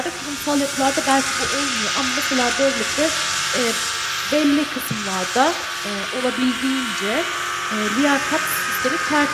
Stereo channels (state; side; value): identical; both; correlation 1.00